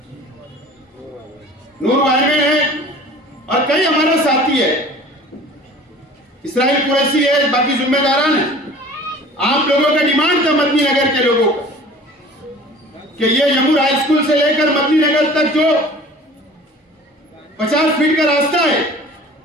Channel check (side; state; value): both; normal; correlation 0.45